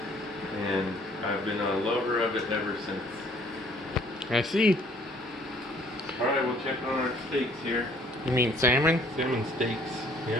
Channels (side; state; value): both; normal; correlation 0.59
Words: And I've been a lover of it ever since. I see. Alright, we'll check on our steaks here. You mean salmon? Salmon steaks,